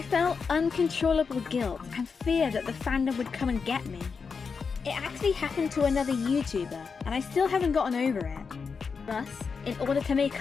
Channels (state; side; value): quieter; right; 5.4 dB